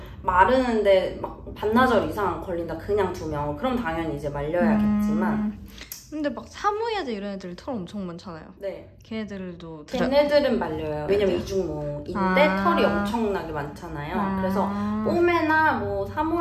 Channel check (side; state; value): both; identical; correlation 1.00